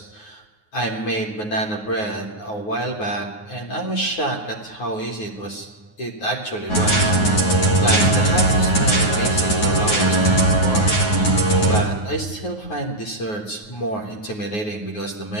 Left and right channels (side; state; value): right; late; 9.5 ms